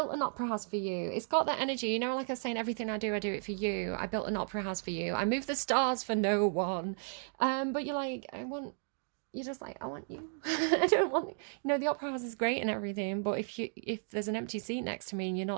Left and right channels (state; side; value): silent; left; 55 dB below the other